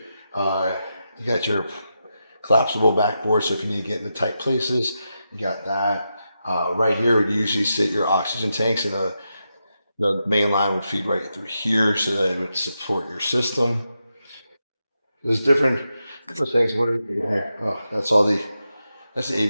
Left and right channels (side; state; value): both; inverted; correlation -0.87